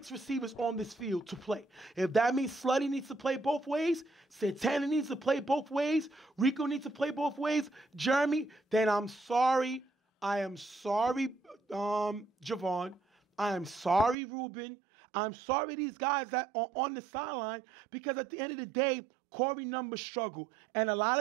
receivers on this field to play. If that means Slutty needs to play both ways, Santana needs to play both ways, Rico needs to play both ways, Jeremy, then I'm sorry. I am sorry, Javon. I am sorry, Ruben. I'm sorry these guys that are on the sideline, because at the end of the day, Corey numbers struggle. And a lot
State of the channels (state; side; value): drops out; left; at 14.2 s